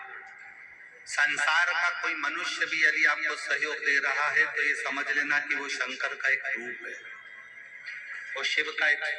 संसार का कोई मनुष्य भी यदि आपको सहयोग दे रहा है तो ये समझ लेना कि वो शंकर का एक रूप है, वो शिव का एक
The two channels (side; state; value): both; identical; correlation 1.00